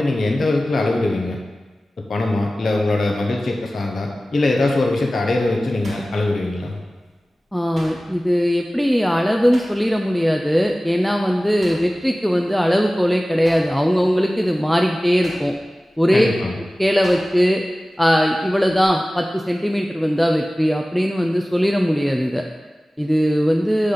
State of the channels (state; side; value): normal; both; correlation 0.97